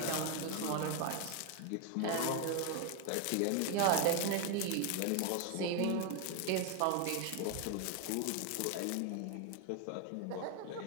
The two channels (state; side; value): different; both; correlation 0.01